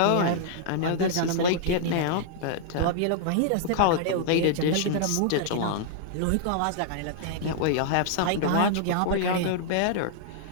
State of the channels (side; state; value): both; different; correlation -0.01